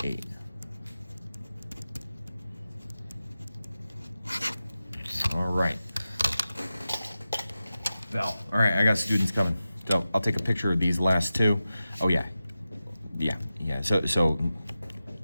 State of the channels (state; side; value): inverted; both; correlation -0.93